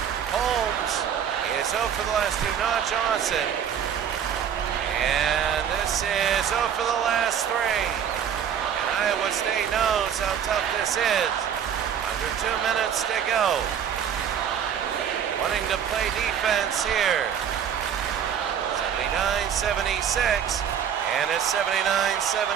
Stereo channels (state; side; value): quieter; left; 8.5 dB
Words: Holmes is 0 for the last 2, not Johnson. And this is 0 for the last 3. And Iowa State knows how tough this is. Under 2 minutes to go. Wanting to play defense here. 79-76, and it's